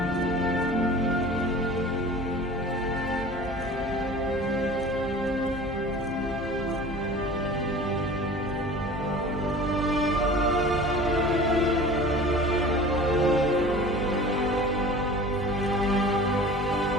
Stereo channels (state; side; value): normal; both; correlation 0.41